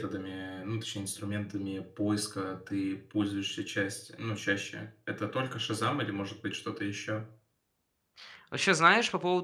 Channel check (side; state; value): both; identical; correlation 1.00